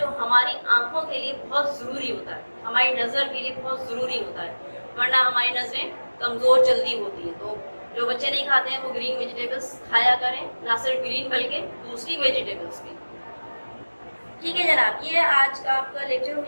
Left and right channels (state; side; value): inverted; both; correlation -1.00